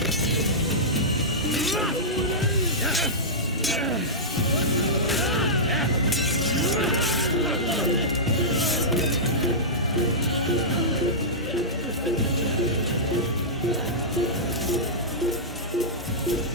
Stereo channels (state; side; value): normal; both; correlation -0.14